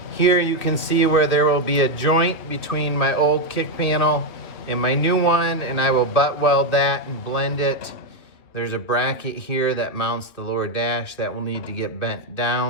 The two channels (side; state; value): right; late; 2.6 ms